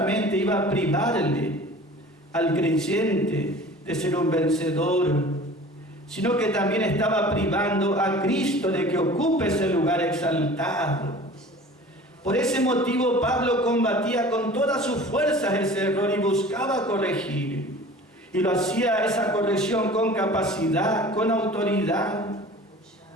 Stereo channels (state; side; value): normal; both; correlation 0.43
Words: iba a privarle al creyente de ser un vencedor, sino que también estaba privando a Cristo de que ocupe ese lugar exaltado. Por ese motivo Pablo combatía con todas sus fuerzas ese error y buscaba corregir. Y lo hacía esa corrección con capacidad, con autoridad.